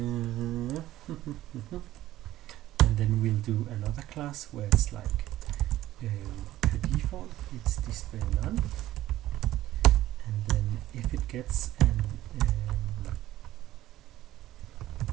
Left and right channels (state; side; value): quieter; left; 14.7 dB